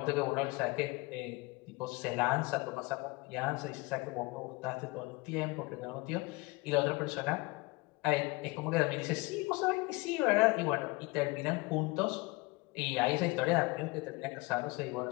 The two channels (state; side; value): quieter; right; 24.5 dB